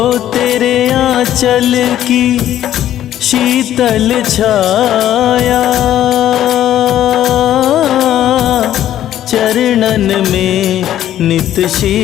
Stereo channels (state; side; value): quieter; right; 11.9 dB